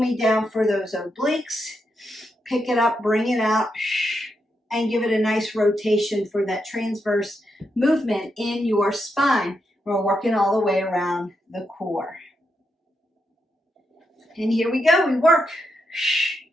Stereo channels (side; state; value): both; normal; correlation 0.83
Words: down for those obliques. Pick it up, bring it out, and give it a nice rotation for that transverse movement in your spine. We're working all the way around the core. And here we go, we work.